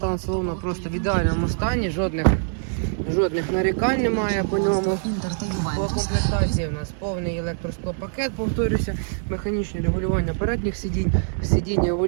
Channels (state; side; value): silent; left; digital silence